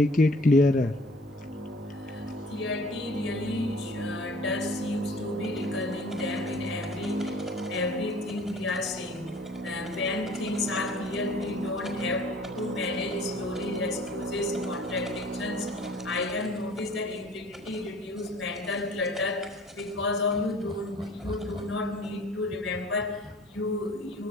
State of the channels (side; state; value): both; normal; correlation 0.50